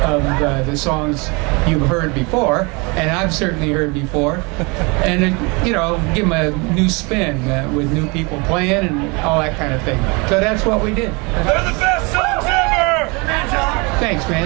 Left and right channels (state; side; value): quieter; left; 28.6 dB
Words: of the songs you've heard before, and I've certainly heard before, and give them a new spin with new people playing and all that kind of thing. So that's what we did. They're the best songs ever! Thanks,